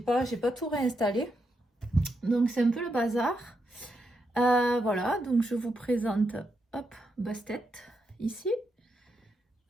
tout réinstallé. Donc c'est un peu le bazar. Voilà, donc je vous présente, hop, Bastet, ici.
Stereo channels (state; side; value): normal; both; correlation 0.83